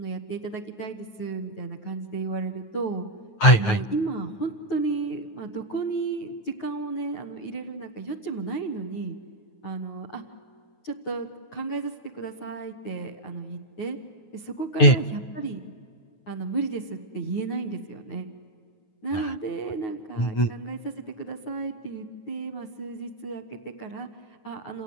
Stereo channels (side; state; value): right; late; 9.4 ms